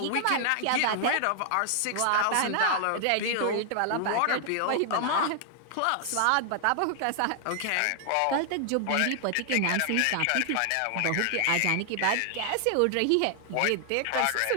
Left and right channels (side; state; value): both; different; correlation 0.00